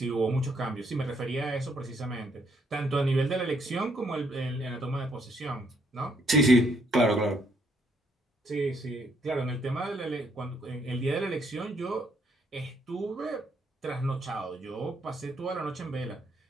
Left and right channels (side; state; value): both; normal; correlation 0.71